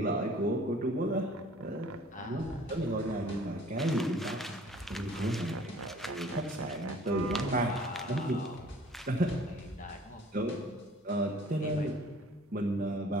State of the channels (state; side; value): normal; both; correlation 0.52